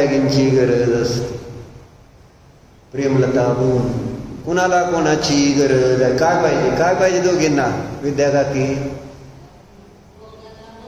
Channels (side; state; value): both; identical; correlation 1.00